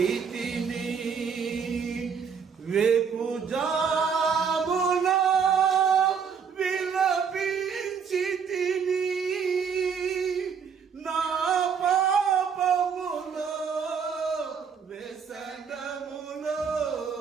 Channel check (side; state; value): left; quieter; 6.6 dB